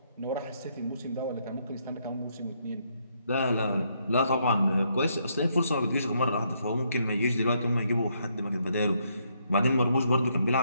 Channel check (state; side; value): inverted; both; correlation -0.74